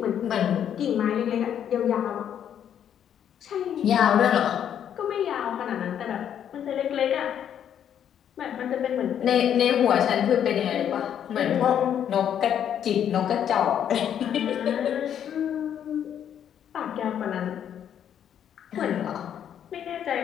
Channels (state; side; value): quieter; right; 9.4 dB